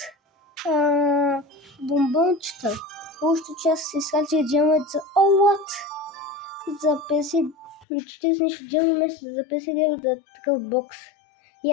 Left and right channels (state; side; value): drops out; right; at 7.9 s